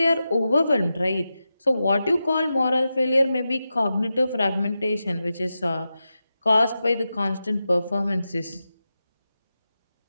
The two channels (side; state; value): both; inverted; correlation -0.91